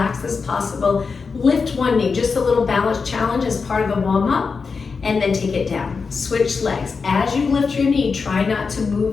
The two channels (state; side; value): quieter; right; 5.0 dB